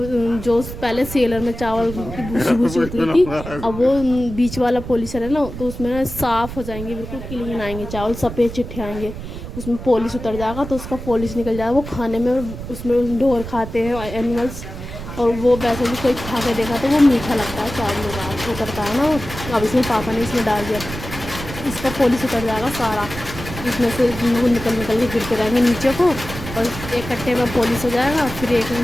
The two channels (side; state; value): right; noise; rumble, 10 dB below the sound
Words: जो पहले सेलर में चावल की भूसी भूसी होती थी, अब वो बीच वाला पॉलिशर है ना, तो उसमें ना साफ़ हो जाएंगे, बिल्कुल क्लीन आएंगे चावल, सफ़ेद चिट्ठे आएंगे, उसमें पॉलिश उतर जाएगा, तो उसका पॉलिश निकल जाएगा। वो खाने में, उसमें ढोर खाते हैं एनिमल्स, और वो वैसे भी कोई खा के देखा तो वो मीठा लगता है, चावल का उतरता है ना वो। अब इसमें पापा ने इसमें डाल दिया, इसका पॉलिश उतर जाएगा सारा, इसमें से निकल निकल के गिरते रहेंगे नीचे को, और एक कट्टे में पॉलिश हो जाएगा। फिर एक